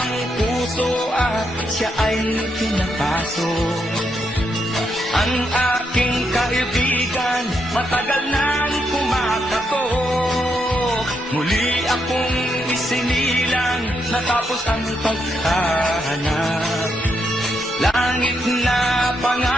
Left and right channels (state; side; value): normal; both; correlation 0.80